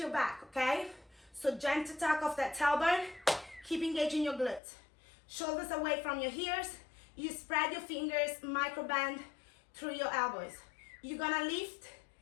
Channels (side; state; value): right; drops out; at 4.6 s